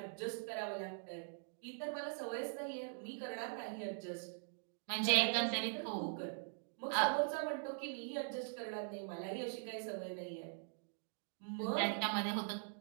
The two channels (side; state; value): left; silent; digital silence